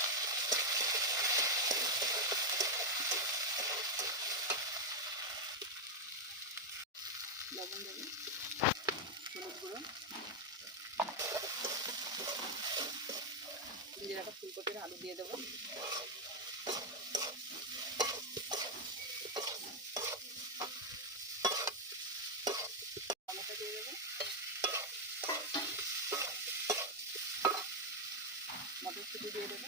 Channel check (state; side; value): normal; both; correlation 0.02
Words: লবণ দেব, হলুদ গুঁড়ো, ভেজে রাখা ফুলকপির আলু দিয়ে দেবো। টমেটো দিয়ে দেবো, মটরশুঁটি দিয়ে দেবো,